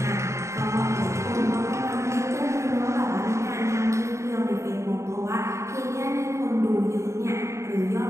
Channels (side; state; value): left; late; 0.14 ms